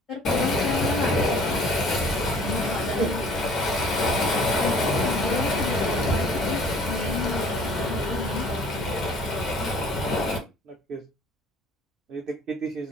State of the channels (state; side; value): normal; both; correlation 0.53